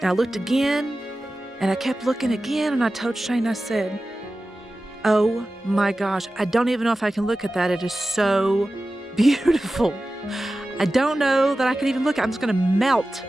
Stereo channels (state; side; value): normal; both; correlation 0.95